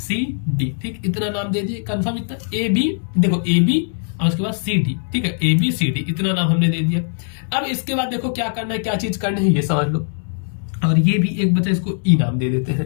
ठीक, इतना नाम दे दिए। कंफर्म इतना AB, देखो AB और उसके बाद CD, ठीक है, ABCD इतना नाम हमने दे दिया। अब इसके बाद देखो क्या करना है, क्या चीज करनी है ये समझ लो, और ये भी एक बचा, इसको E नाम दे देते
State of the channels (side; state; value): right; silent; digital silence